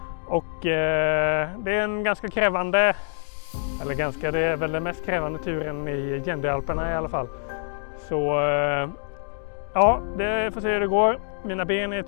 Och det är en ganska krävande, det är väl den mest krävande turen i Gendealperna i alla fall. Så ja, det får se hur det går. Mina ben är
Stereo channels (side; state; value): right; silent; digital silence